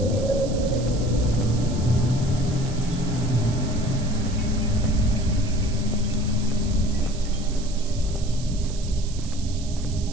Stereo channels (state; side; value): noise; right; hiss, 15 dB below the sound